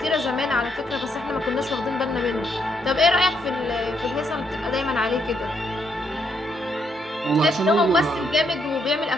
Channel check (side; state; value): both; normal; correlation 0.75